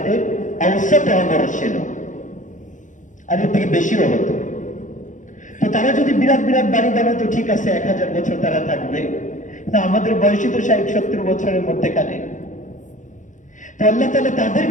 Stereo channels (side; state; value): right; late; 0.37 ms